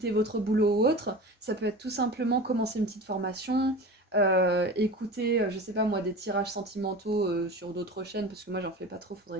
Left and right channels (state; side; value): normal; both; correlation 0.34